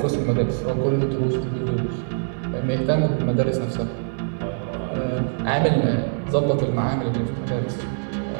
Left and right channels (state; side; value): silent; left; digital silence